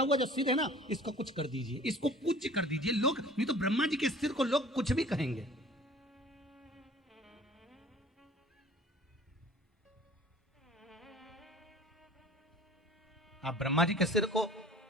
जो सिर है ना इसको कुछ कर दीजिए, इसको पूज्य कर दीजिए। लोग नहीं तो ब्रह्मा जी के सिर को लोग कुछ भी कहेंगे। आप ब्रह्मा जी के सिर को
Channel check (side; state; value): both; normal; correlation 0.47